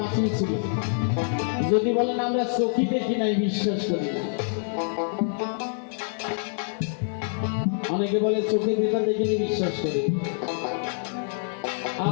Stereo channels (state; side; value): silent; right; digital silence